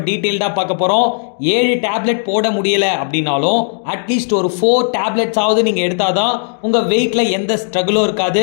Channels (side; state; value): right; silent; digital silence